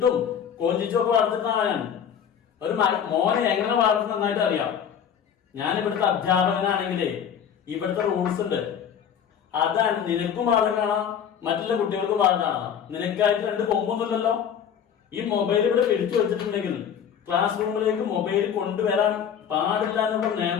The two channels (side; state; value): right; quieter; 8.2 dB